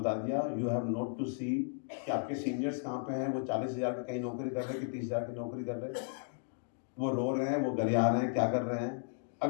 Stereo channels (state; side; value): silent; right; digital silence